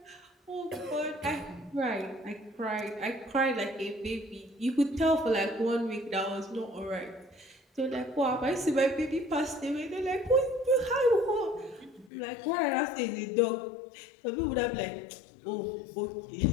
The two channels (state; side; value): drops out; right; at 12.1 s